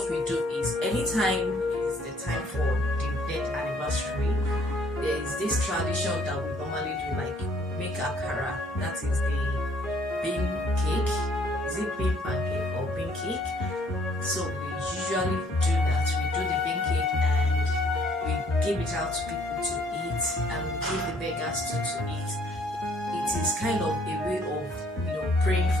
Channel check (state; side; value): normal; both; correlation 0.62